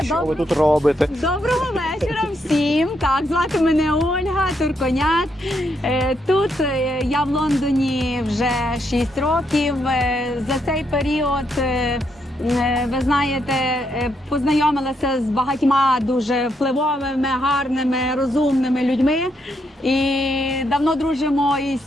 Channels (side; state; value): both; normal; correlation 0.77